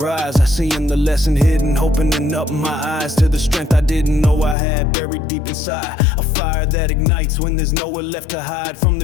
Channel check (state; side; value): drops out; right; at 4.5 s